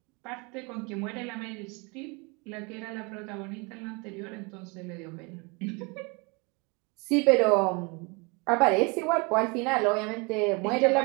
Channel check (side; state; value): left; quieter; 29.7 dB